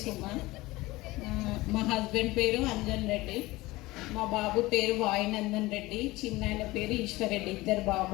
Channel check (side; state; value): right; quieter; 20.0 dB